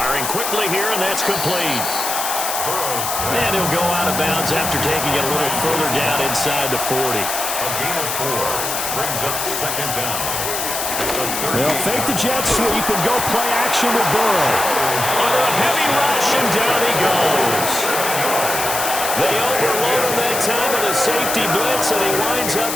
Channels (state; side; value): noise; left; hiss, 3 dB below the sound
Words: quickly here, and that's complete. And he'll go out of bounds after taking it a little further down inside the 40. A gain of 4 brings up 2nd down. They'll fake the jet sweep and go play action with Burrow. Under a heavy rush, and down he goes. They overload him that time with a safety blitz, and he winds up